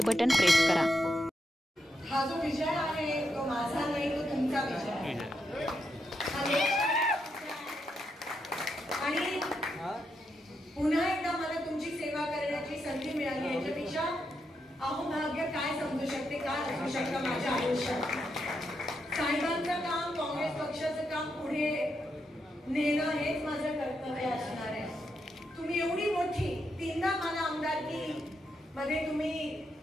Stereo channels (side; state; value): both; normal; correlation 0.83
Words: बटन प्रेस करा। हा जो विजय आहे तो माझा नाही, तो तुमचा विजय आहे। आणि पुन्हा एकदा मला तुमची सेवा करण्याची संधी मिळाली, याच्यापेक्षा अहोभाग्य काय समजू शकते, काय असू शकतं माझ्या आयुष्यात। साहेबांचं काम, काँग्रेस पक्षाचं काम पुढे नेणं हेच माझं कर्तव्य असणार आहे। तुम्ही एवढी मोठी तीनदा मला आमदारकी मध्ये तुम्ही